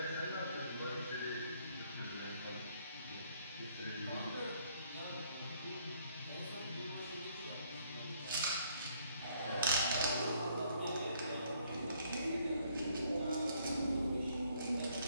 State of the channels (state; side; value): inverted; both; correlation -0.66